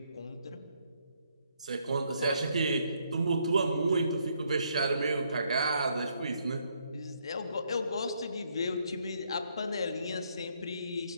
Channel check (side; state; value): both; inverted; correlation -0.72